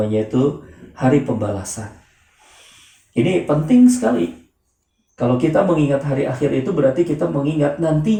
itu hari pembalasan. Ini penting sekali. Kalau kita mengingat hari akhir itu berarti kita mengingat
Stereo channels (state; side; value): identical; both; correlation 1.00